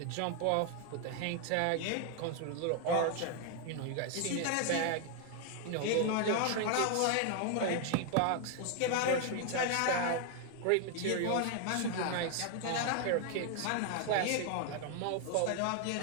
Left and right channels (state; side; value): different; both; correlation 0.00